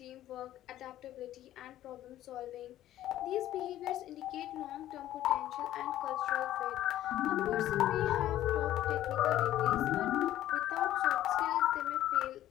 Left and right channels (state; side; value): quieter; right; 13.2 dB